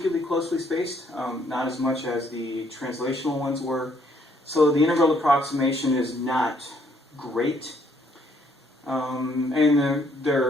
closely spaced, not as much as the translational ones were. So the integral approximation is not great, and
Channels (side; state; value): both; normal; correlation 0.68